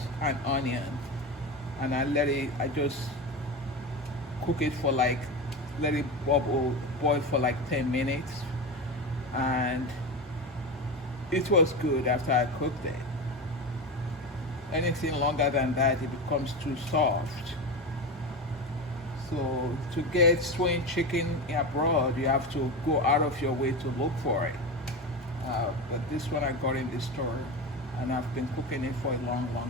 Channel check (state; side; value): normal; both; correlation 0.22